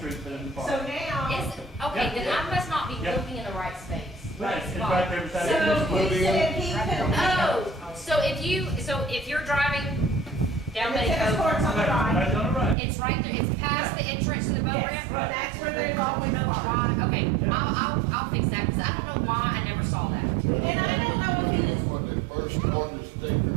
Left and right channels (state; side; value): drops out; left; at 12.8 s